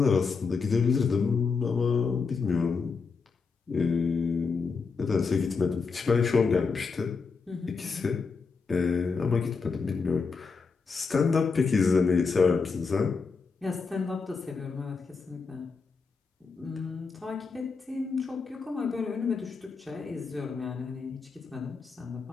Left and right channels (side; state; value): right; quieter; 4.9 dB